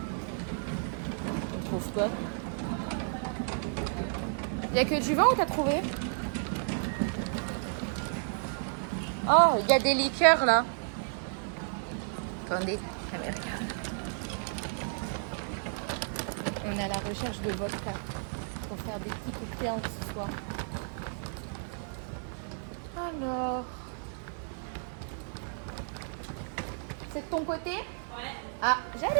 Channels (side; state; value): left; silent; digital silence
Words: On trouve quoi? Il n'y a que du vin ou t'as trouvé? Oh, il y a des liqueurs là. Attendez, caméra. On est à la recherche de vodka pour faire des petits cocktails ce soir. Alors, c'est de ton côté? Ouais. Ah,